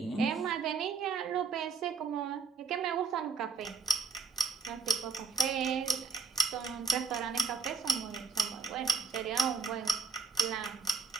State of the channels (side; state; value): left; quieter; 5.0 dB